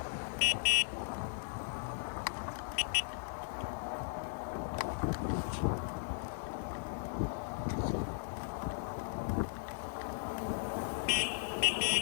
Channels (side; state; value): right; silent; digital silence